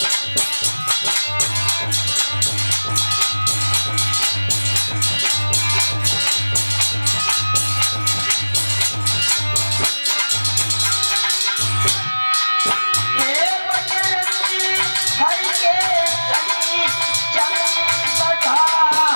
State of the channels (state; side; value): inverted; both; correlation -1.00